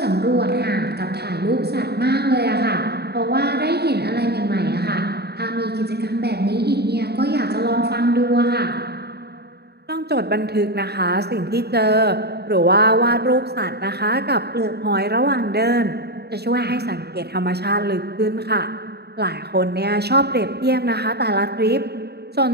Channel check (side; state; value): left; late; 0.47 ms